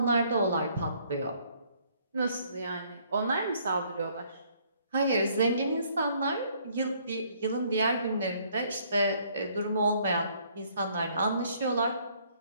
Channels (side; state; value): both; inverted; correlation -0.64